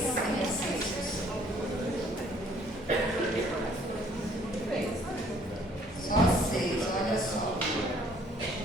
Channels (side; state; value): both; normal; correlation 0.60